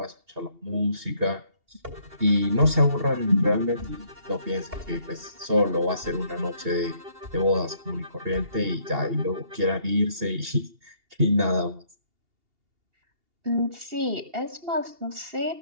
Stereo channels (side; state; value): left; late; 2.8 ms